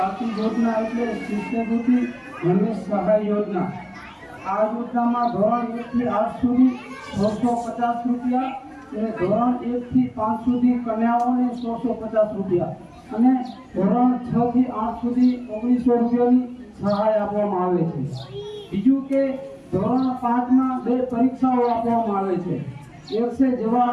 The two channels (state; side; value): identical; both; correlation 1.00